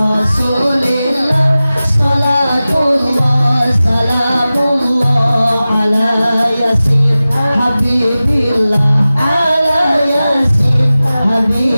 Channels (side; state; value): both; inverted; correlation -0.96